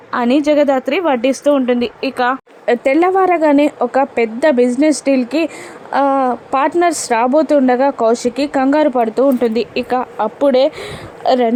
అని జగదాత్రి వడ్డిస్తూ ఉంటుంది. ఇక తెల్లవారగానే ఒక పెద్ద బిజినెస్ డీల్కి పార్ట్నర్స్ రాబోతుండగా కౌశికి కంగారు పడుతూ ఉంటుంది. ఇక అప్పుడే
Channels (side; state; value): both; identical; correlation 1.00